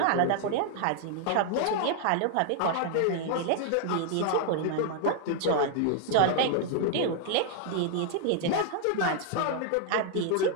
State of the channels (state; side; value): different; both; correlation 0.00